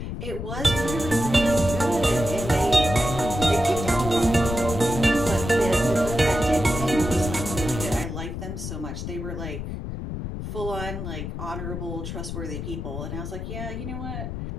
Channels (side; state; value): left; noise; rumble, 6 dB below the sound